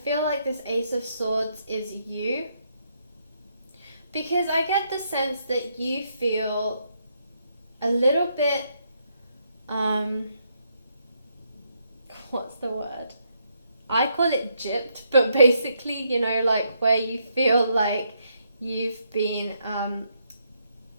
like this Ace of Swords is you. Because I get the sense that you feel a little bit, what's the word? I call it gypped, but basically, like where you feel like you've been,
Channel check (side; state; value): both; inverted; correlation -0.76